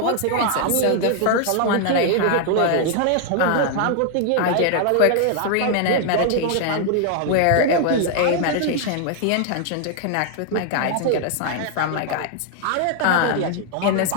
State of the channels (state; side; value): different; both; correlation 0.00